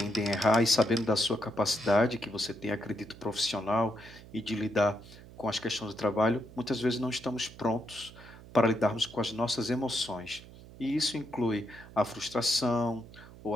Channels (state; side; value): noise; right; hum, 18 dB below the sound